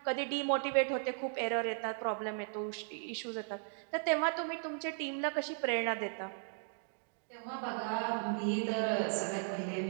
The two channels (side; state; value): left; silent; 53 dB below the other